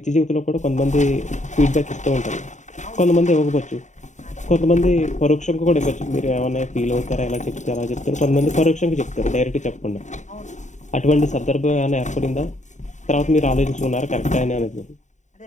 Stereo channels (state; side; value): late; right; 0.35 ms